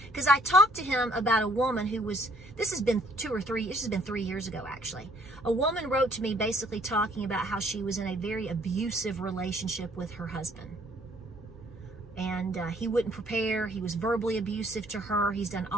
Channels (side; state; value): both; normal; correlation 0.62